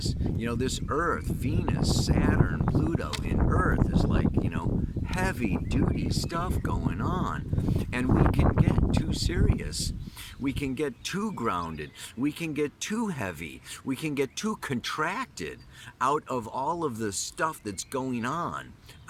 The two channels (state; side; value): identical; both; correlation 1.00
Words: this Earth, Venus, Saturn, Pluto in Earth is like, heavy duty stuff going on. And we can get too serious. We can get too grounded. We can get too heavy. We can get too contracted out of all of the stuff that's going on